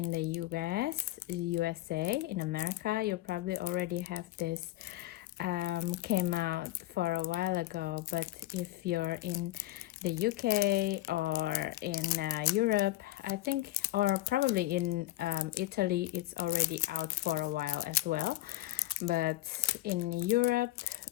the USA, in America, you probably already have this came out for a while ago, but if you're in the UK or in Europe, I think, or probably in Italy, it's already out for a while as well. But in Europe,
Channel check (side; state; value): right; quieter; 16.6 dB